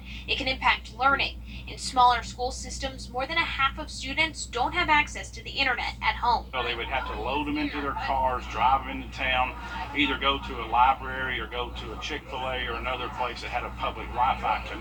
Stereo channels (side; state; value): both; identical; correlation 1.00